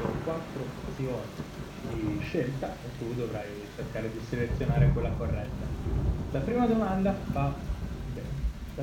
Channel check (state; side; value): identical; both; correlation 1.00